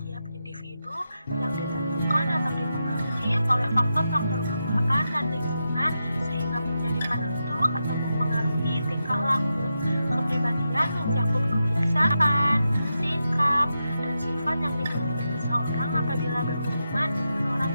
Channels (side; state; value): both; inverted; correlation -0.88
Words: individu yang ditentukan atau dipengaruhi oleh faktor-faktor bawaan dan lingkungan sehingga menjadi penentu atau mempengaruhi tingkah laku. Kepribadian mencakup kebiasaan, sikap, dan sifat yang dimiliki seseorang apabila berhubungan dengan orang